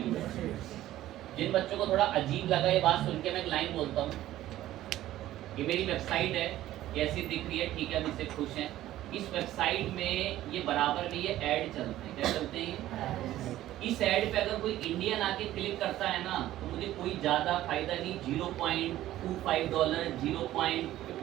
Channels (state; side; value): quieter; left; 14.2 dB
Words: जिन बच्चों को थोड़ा अजीब लगा ये बात सुन के, मैं एक लाइन बोलता हूँ, ये मेरी वेबसाइट है, कैसी दिख रही है, ठीक है, अब इससे खुश हैं, इस वेबसाइट में ये बराबर में ये ऐड चलते हैं, क्या चलते हैं? इस ऐड पे अगर कोई इंडियन आके क्लिक करता है ना तो मुझे कोई ज़्यादा फायदा नहीं, $0.25,